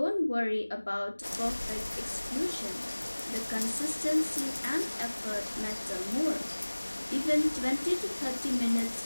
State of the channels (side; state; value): both; inverted; correlation -1.00